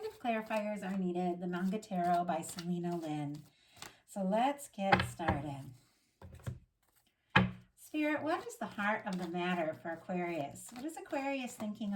if clarifiers are needed, the Manga Tarot by Selena Lynn. So let's get started. Spirit, what is the heart of the matter for Aquarius? What is Aquarius thinking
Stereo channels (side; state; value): both; identical; correlation 1.00